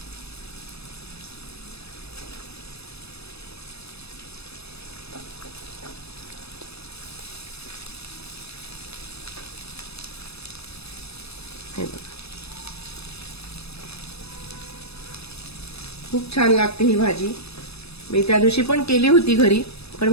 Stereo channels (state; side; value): late; right; 0.78 ms